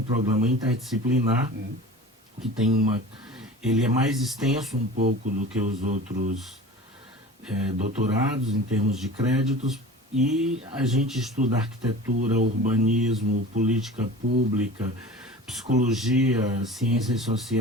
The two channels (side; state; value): both; normal; correlation 0.37